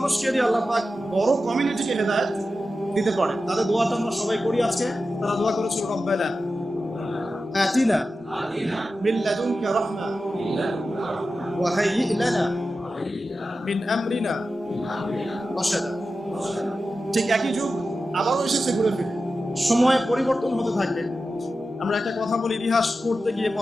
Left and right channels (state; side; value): normal; both; correlation 0.92